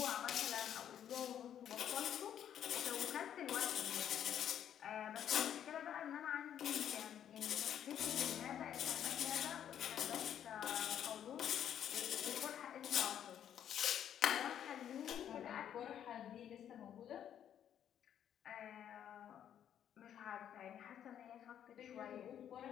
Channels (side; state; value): right; quieter; 9.8 dB